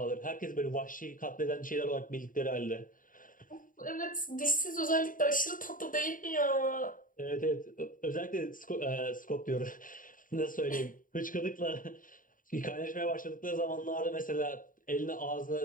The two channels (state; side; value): late; right; 0.39 ms